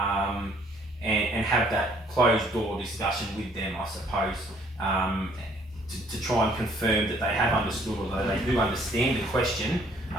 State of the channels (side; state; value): both; normal; correlation 0.61